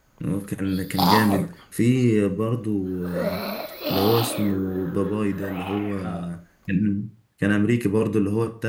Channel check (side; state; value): both; identical; correlation 1.00